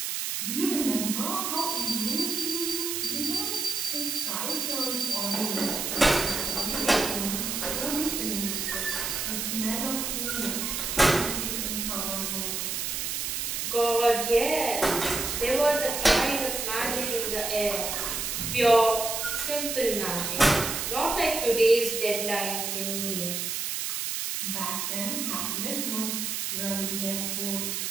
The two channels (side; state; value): right; noise; hiss, 2 dB below the sound